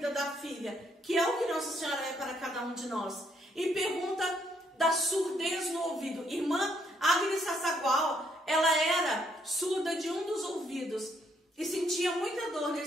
da filha, que é o que Nossa Senhora é para cada um de nós. E pergunta da surdez no ouvido. Irmã Agnes Sassagual, ela era surda de um dos ouvidos e sentia muita dor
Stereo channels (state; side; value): normal; both; correlation 0.71